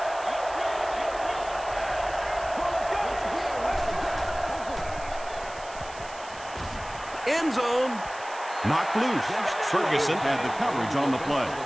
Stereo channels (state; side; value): noise; right; hiss, 18 dB below the sound